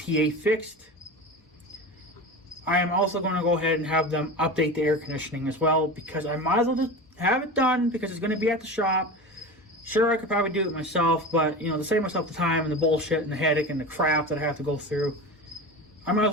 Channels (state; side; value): normal; both; correlation 0.29